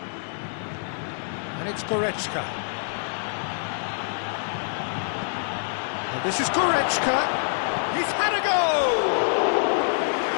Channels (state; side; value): silent; right; digital silence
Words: And it's Goretzka. And this is Goretzka. He's had a go!